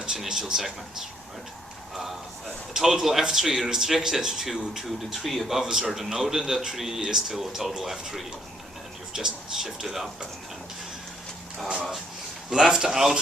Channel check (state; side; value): normal; both; correlation 0.69